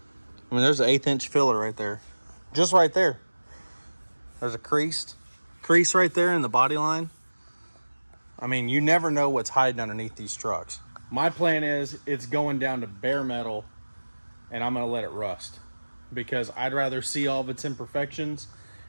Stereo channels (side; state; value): both; inverted; correlation -1.00